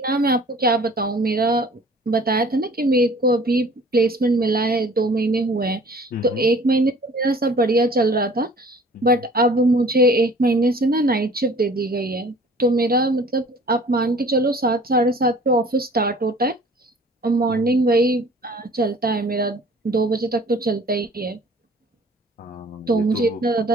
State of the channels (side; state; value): both; normal; correlation 0.50